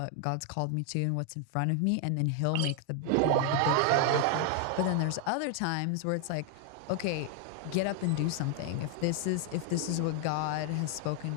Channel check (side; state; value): both; different; correlation 0.00